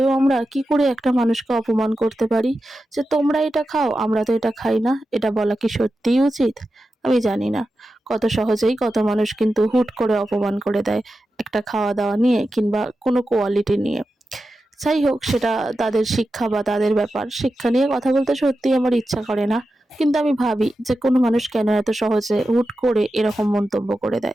আমরা কি করে একটা মানুষকে অপমান করতে পারি? যে তোমরা এটা খাও আমরা তো এটা খাই না, এটা বলা কি সত্যিই উচিত? আমি জানি না। কত সহজেই কত মানুষ কিন্তু হুট করে অপমান করে দেয় একটা খাওয়া দাওয়া নিয়ে কিংবা কোনো কোয়ালিটি নিয়ে। যাই হোক, সেটা তাদের শিক্ষা বা তাদের ব্যাপার। শিক্ষা নিয়ে কথা বলতে সত্যিই আমার ইচ্ছা করে না, কিন্তু আমি ভাবি যে কোনো মানুষ কেন এত সহজে হুট করে এরকম মন্তব্য করে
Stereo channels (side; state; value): both; normal; correlation 0.91